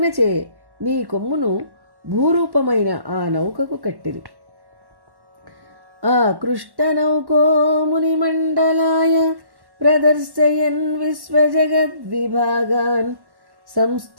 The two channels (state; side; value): late; left; 1.1 ms